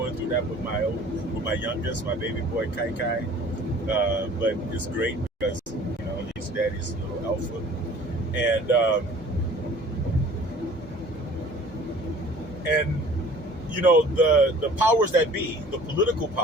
through that with my youngest, my baby boy Kai Kai. But it's great because, you know, he's daddy's little alpha. And you know, the powers that be, the political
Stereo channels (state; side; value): normal; both; correlation 0.49